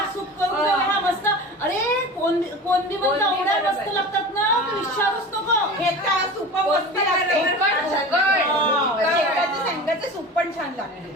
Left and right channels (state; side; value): normal; both; correlation 0.34